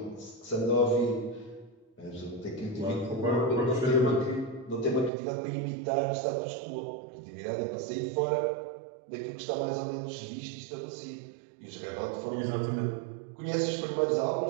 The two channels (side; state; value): left; drops out; at 5.1 s